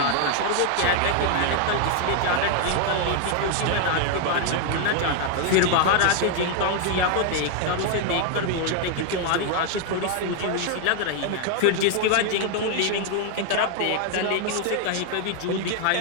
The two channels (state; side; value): different; both; correlation 0.00